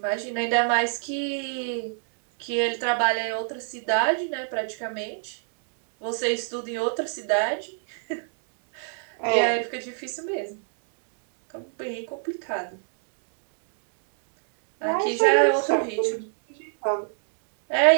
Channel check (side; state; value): left; silent; digital silence